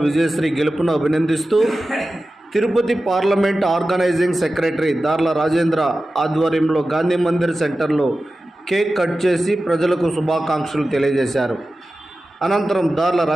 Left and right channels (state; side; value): normal; both; correlation 0.94